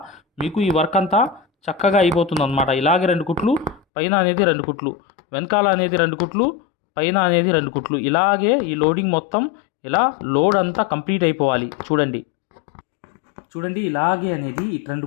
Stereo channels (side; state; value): right; drops out; at 3.8 s